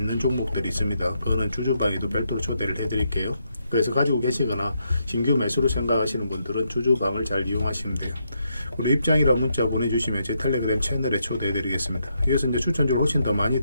종목들이 있습니다. 그거는 주주방에도 별도로 초대를 해드릴게요. 그래서 가지고 계시거나 신규 매수로 생각하시는 분들은 주주방을 잘 이용하시면 돼요. 그리고 입장이라 문자 보내주시면 제 텔레그램 채널에 초대해 드리겠습니다. 여기서 이제 추천주를 훨씬 더 많이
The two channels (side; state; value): both; inverted; correlation -0.79